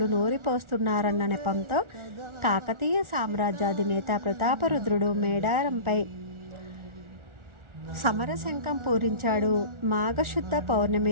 నూరిపోస్తున్నారన్న నెపంతో కాకతీయ సామ్రాజ్యాధినేత ప్రతాపరుద్రుడు మేడారంపై సమరశంఖం పూరించాడు. మాఘశుద్ధ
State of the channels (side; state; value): left; late; 1.4 ms